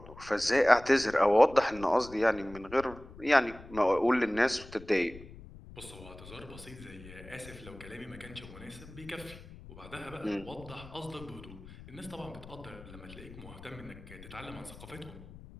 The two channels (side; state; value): left; noise; rumble, 17 dB below the sound